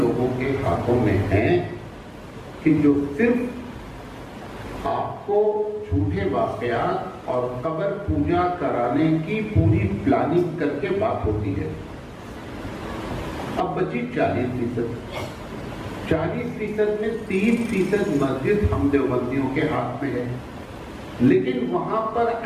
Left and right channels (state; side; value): identical; both; correlation 1.00